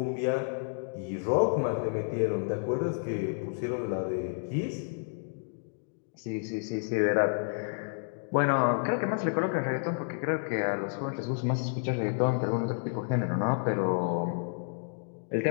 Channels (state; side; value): silent; right; digital silence